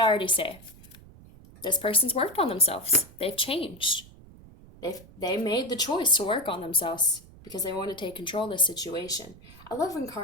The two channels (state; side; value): noise; right; rumble, 21 dB below the sound